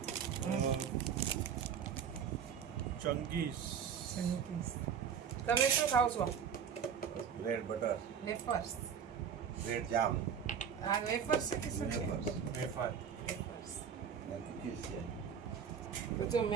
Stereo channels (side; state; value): left; quieter; 7.5 dB